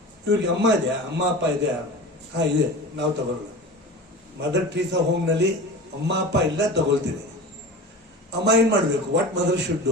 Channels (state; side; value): normal; both; correlation 0.33